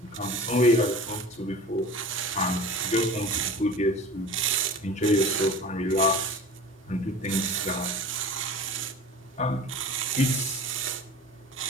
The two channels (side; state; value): both; normal; correlation 0.37